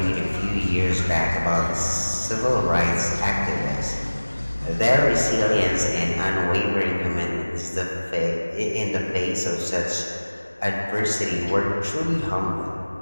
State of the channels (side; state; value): both; inverted; correlation -1.00